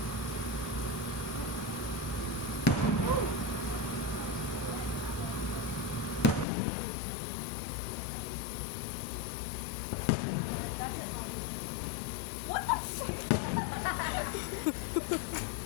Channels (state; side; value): drops out; right; at 6.5 s